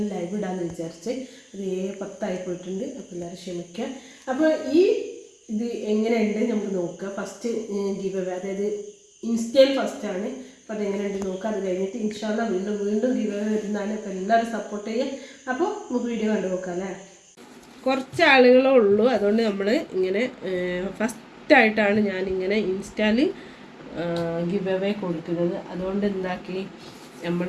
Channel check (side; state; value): both; identical; correlation 1.00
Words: ലൈവ് ഇടാമെന്ന് വിചാരിച്ച് അത് 7:10 പോയിട്ടുണ്ട്. അപ്പോൾ എല്ലാവരും ക്ഷമിക്കുക. അപ്പോൾ ഇത് എങ്ങനെയുണ്ട് നമുക്ക് നോക്കുക. ഫസ്റ്റ് ഗിവ് അവേ, അതായത് ഇൻസ്റ്റയിൽ ഫസ്റ്റാണ്. അപ്പോൾ അതെങ്ങനെയുണ്ട് നോക്കുക. അത് കഴിഞ്ഞിട്ട് ഇൻഷാല്ലാ വീണ്ടും ഗിവ് അവേ വരുന്നതാണ്. അപ്പോൾ എല്ലാവരും സപ്പോർട്ട് ചെയ്യുക. അപ്പോൾ നമുക്ക് വീഡിയോ കണ്ടു നോക്കാം അല്ലേ. കുറച്ച് ആളുകളേ ഉള്ളൂ, അതുകൊണ്ട് നമ്മൾ ഇങ്ങനെ ഫസ്റ്റായിട്ടാണ് ഞാനിങ്ങനെ ഇൻസ്റ്റയിൽ ഗിവ് അവേ കൊടുക്കുന്നത്. അതുകൊണ്ട് എന്താക്കി, നമ്മൾ